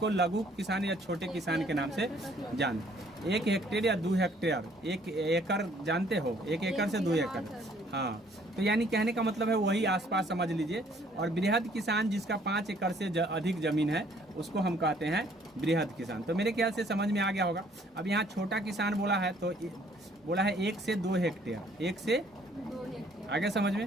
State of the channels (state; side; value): normal; both; correlation 0.61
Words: लघु किसान या छोटे किसान के नाम से जानते हैं। 1 हेक्टेयर या 2 हेक्टेयर, 1 एकड़ जानते हो, 1 एकड़ से 2 एकड़। हाँ, तो यानी कहने का मतलब है वही आसपास समझ लीजिए। और बृहद किसान जिसका 5 एकड़ से अधिक जमीन है, उसको हम कहते हैं बृहद किसान। तो मेरे ख्याल से समझ में आ गया होगा। अब यहाँ छोटा किसान बोला है तो बोला है 1 से 2 हेक्टेयर, 1 से 2 हेक्टेयर। आगे समझ में।